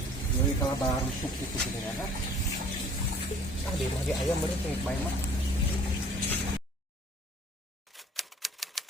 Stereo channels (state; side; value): normal; both; correlation 0.52